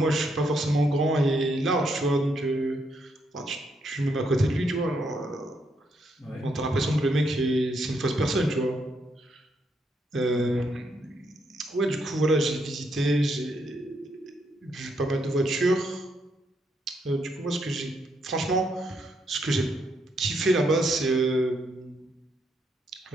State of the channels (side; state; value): both; normal; correlation 0.77